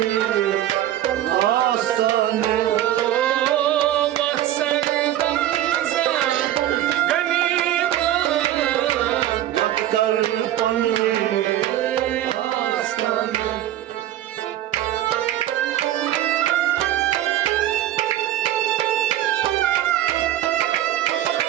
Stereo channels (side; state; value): left; quieter; 12.8 dB